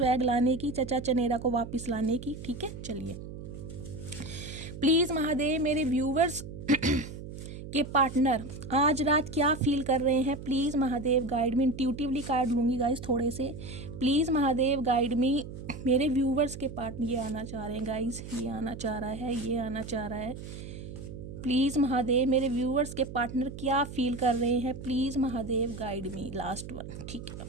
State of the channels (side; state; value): right; noise; hum, 11 dB below the sound